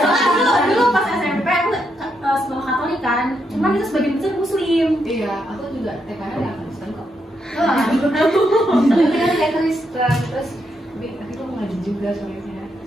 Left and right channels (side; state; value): both; normal; correlation 0.80